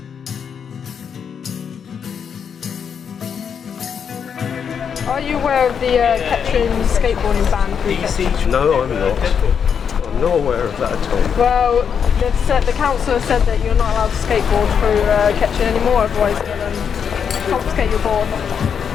Are you aware of the Kettering skateboarding ban through Kettering? No, I'm not. I'm not aware of that at all. Well, the council has said that you're not allowed to skateboard through Kettering anymore, otherwise they'll confiscate your board.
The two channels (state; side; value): quieter; right; 7.2 dB